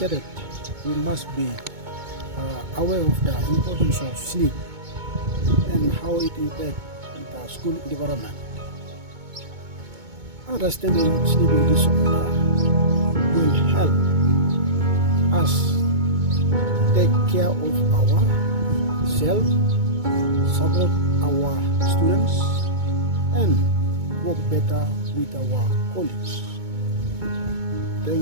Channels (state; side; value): late; left; 2.2 ms